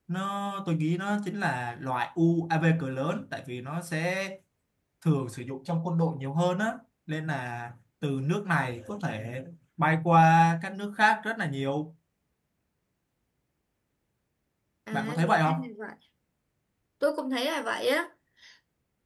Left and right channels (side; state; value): both; identical; correlation 1.00